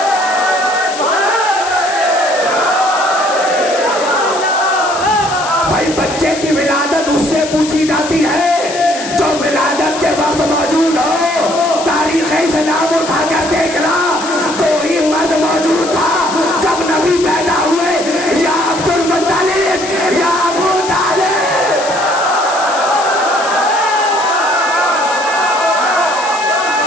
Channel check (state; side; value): noise; left; hiss, 10 dB below the sound